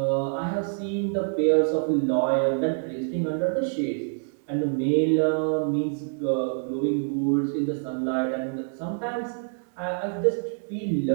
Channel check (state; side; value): silent; left; digital silence